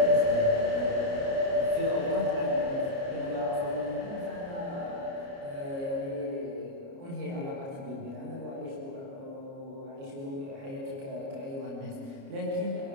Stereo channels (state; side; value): late; left; 29 ms